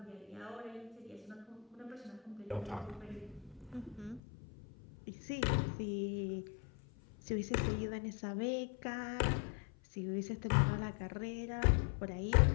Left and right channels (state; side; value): drops out; right; at 4.2 s